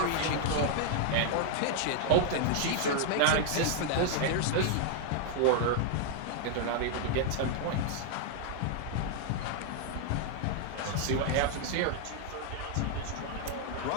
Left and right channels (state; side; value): different; both; correlation 0.00